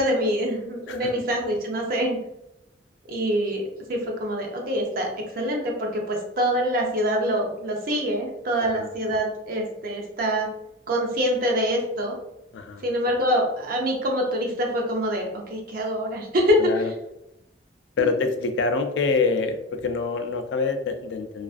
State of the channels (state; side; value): normal; both; correlation 0.24